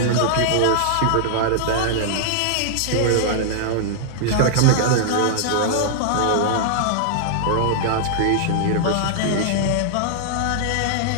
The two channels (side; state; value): both; different; correlation -0.01